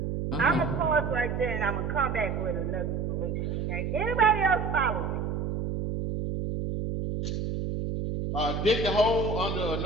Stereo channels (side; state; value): right; noise; hum, 2 dB below the sound